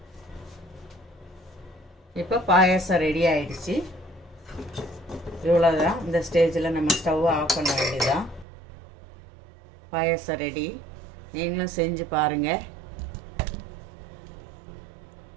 இப்போ பாயாசம் ரெடி ஆயிடுச்சு. இவ்வளோதான். இந்த ஸ்டேஜில் நம்ம ஸ்டவ்வை ஆஃப் பண்ண வேண்டியதான். பாயாசம் ரெடி. நீங்களும் செஞ்சு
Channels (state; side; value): drops out; left; at 8.5 s